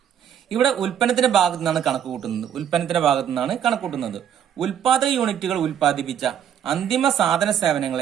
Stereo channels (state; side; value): quieter; left; 9.2 dB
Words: ഇവിടെ ഉൽപ്പന്നത്തിന്റെ ഭാഗത്തു നിന്നാണ് കണക്ക് കൂട്ടുന്നത്. ഉൽപാദക യൂണിറ്റുകൾ ഉൽപ്പാദിപ്പിച്ച അന്തിമ സാധന